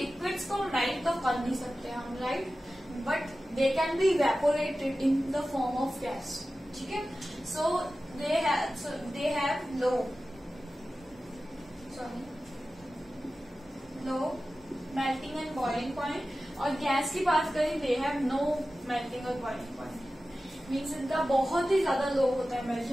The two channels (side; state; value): both; normal; correlation 0.95